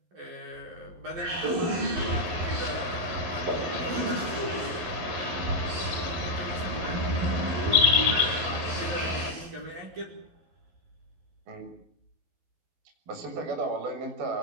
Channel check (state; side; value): late; left; 12 ms